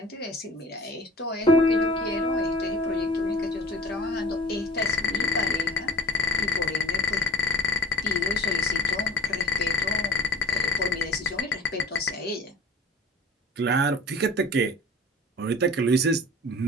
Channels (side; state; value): both; normal; correlation 0.45